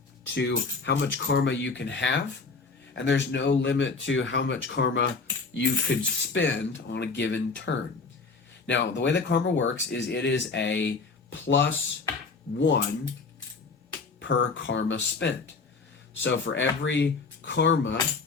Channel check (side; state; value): right; quieter; 4.3 dB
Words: to how much karma you can have, and there's no limit to how much karma you could spend on a given turn. Now, the way that karma works is it is a +1 per karma spent. So for every karma